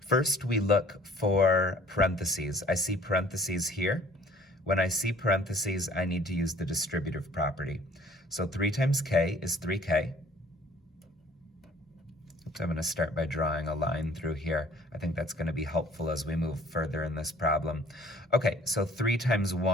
First, we look for parentheses. I see parentheses here. When I see parentheses, I need to use the distributive property. So 3 times k is 3k. I'm going to start by drawing a line through here. I think that's going to be helpful as we move further in this problem. Okay, so 3 times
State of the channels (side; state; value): both; normal; correlation 0.55